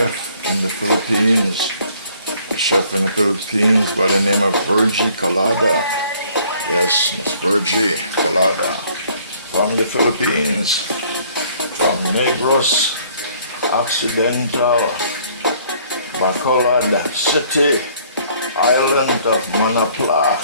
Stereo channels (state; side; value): inverted; both; correlation -0.60